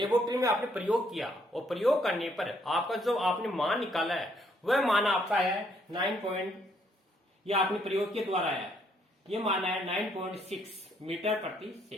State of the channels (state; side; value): normal; both; correlation 0.69